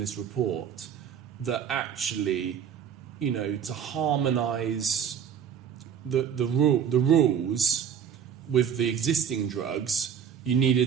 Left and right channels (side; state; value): left; quieter; 8.1 dB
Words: report, that actually, to harmonise the rules with the existing drugs, you needed